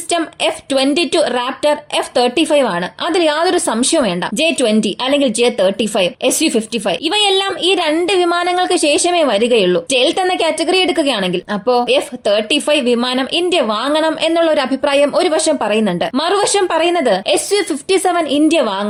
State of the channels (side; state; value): both; identical; correlation 1.00